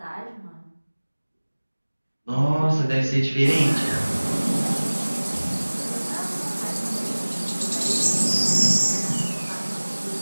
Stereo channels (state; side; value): inverted; both; correlation -1.00